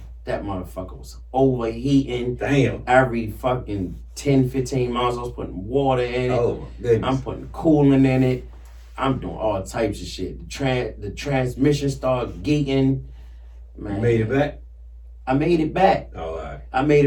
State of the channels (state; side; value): identical; both; correlation 1.00